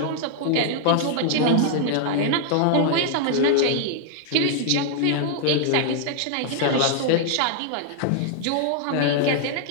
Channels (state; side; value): different; both; correlation -0.01